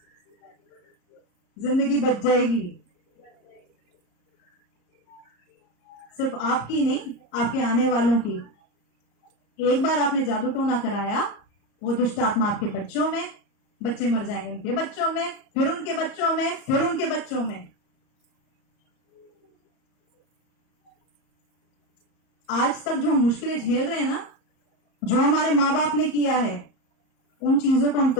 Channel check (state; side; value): late; right; 34 ms